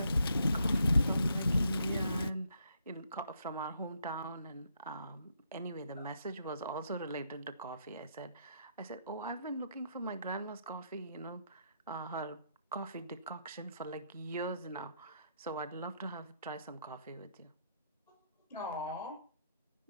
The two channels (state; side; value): inverted; both; correlation -0.76